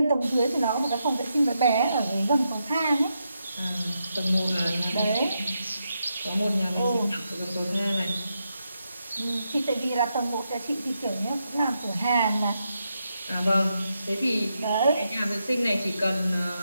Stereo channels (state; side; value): inverted; both; correlation -0.84